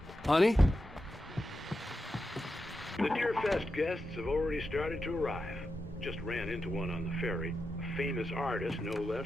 Honey? The Deerfest guests have already started to arrive. Just ran into one on the ferry. A famous artist, no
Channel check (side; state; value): both; normal; correlation 0.89